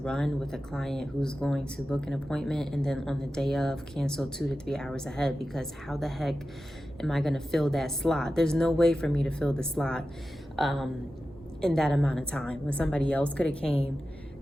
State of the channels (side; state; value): both; normal; correlation 0.93